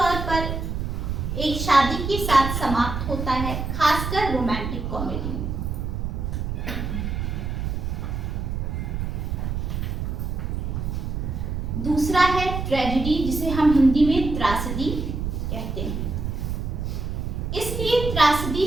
पर एक शादी के साथ समाप्त होता है, खासकर रोमांटिक कॉमेडी में। दूसरा है ट्रेजेडी, जिसे हम हिंदी में त्रासदी कहते हैं। इसलिए त्रासदी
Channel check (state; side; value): noise; right; rumble, 3 dB below the sound